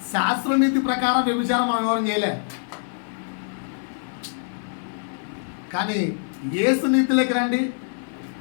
శాస్త్రనీతి ప్రకారం వ్యభిచారం మనం ఎవరు చేయలే, కానీ యేసు నీతిలోకి రండి.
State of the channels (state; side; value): silent; right; digital silence